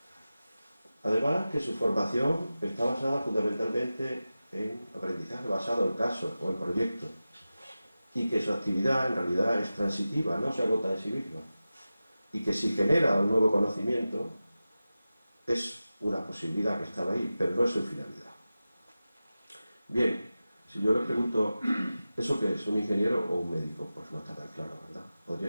Además que su formación está basada fundamentalmente en aprendizaje basado en casos o en proyectos, y que su actividad en realidad es transitiva, no se agota en sí misma, y que si genera un nuevo conocimiento es una posibilidad que estaba ahí, pero no es su finalidad. Bien, si yo le pregunto, ¿eso qué es? ¿Un ingeniero o un médico? Pues no está tan claro, ¿verdad?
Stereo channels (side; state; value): both; inverted; correlation -0.94